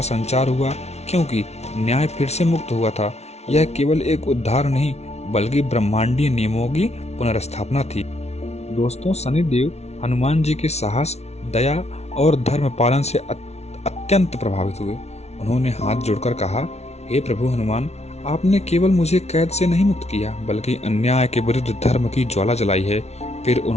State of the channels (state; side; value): late; right; 0.31 ms